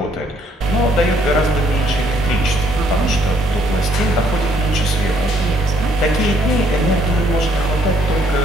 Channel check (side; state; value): both; normal; correlation 0.67